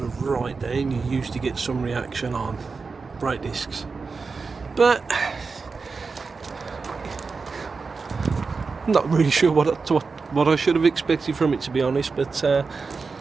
right down, you usually get some reaction on brake discs. But I'm not really sure what I should have expected from it, to be honest, but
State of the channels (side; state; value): left; quieter; 4.6 dB